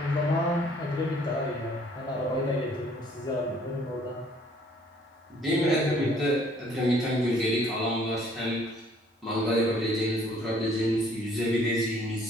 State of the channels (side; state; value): both; normal; correlation 0.60